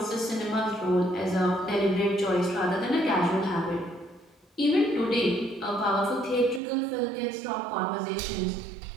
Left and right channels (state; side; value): drops out; left; at 6.6 s